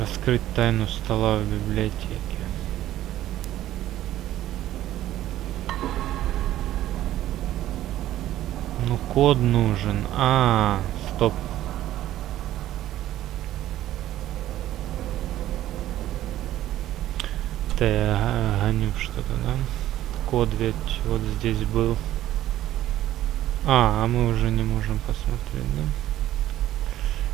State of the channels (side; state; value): left; quieter; 13.6 dB